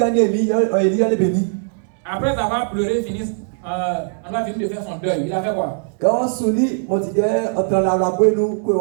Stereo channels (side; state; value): left; silent; digital silence